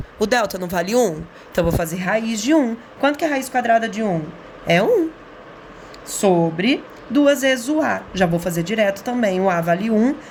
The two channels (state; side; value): identical; both; correlation 1.00